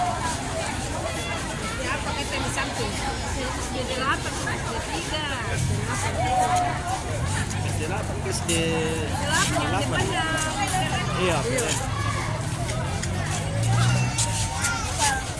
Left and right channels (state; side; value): identical; both; correlation 1.00